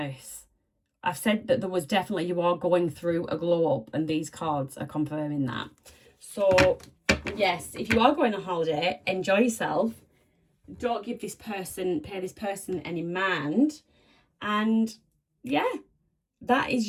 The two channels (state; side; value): identical; both; correlation 1.00